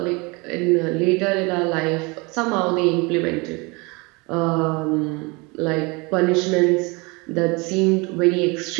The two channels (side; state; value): left; quieter; 27.4 dB